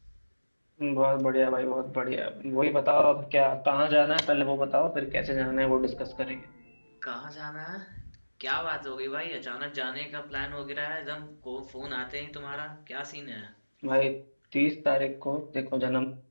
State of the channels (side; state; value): both; inverted; correlation -1.00